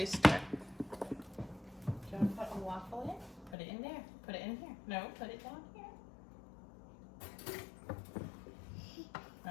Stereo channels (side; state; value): right; drops out; at 3.6 s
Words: Do you want to put a waffle in? Put it in there. Put it in here. No, put it down here.